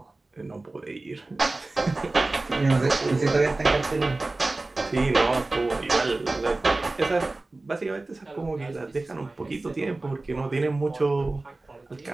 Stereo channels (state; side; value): quieter; left; 3.1 dB